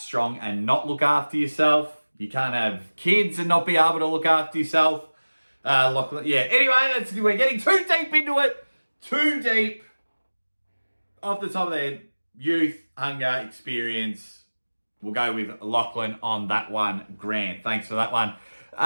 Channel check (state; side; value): inverted; both; correlation -1.00